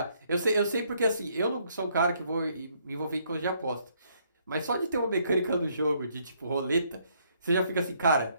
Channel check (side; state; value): both; inverted; correlation -0.69